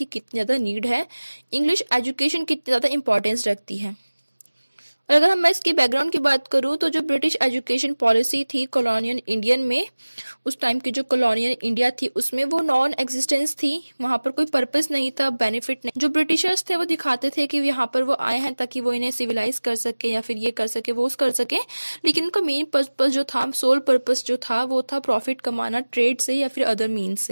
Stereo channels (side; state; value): both; inverted; correlation -1.00